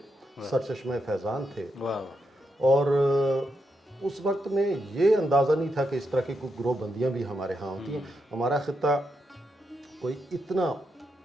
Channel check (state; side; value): normal; both; correlation 0.83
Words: سرچشمہ فیضان تھے. اور اس وقت میں یہ اندازہ نہیں تھا کہ اس طرح کی کوئی گروہ بندیاں بھی ہمارے ہاں ہوتی ہیں. ہمارا خطہ کوئی اتنا